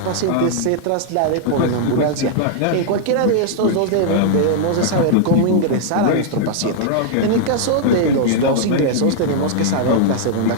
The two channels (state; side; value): different; both; correlation -0.01